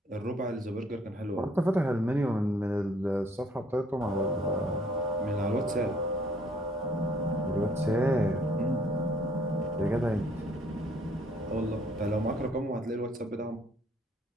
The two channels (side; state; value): both; normal; correlation 0.63